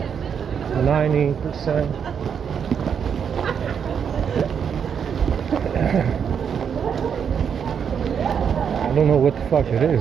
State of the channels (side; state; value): left; quieter; 7.4 dB